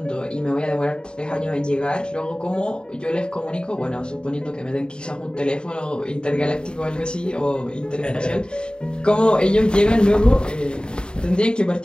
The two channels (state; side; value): late; right; 0.050 ms